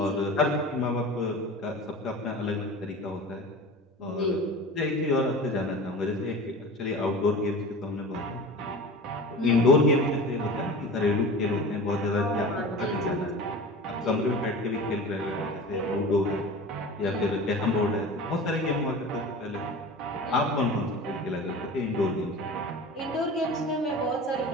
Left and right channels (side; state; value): both; normal; correlation 0.35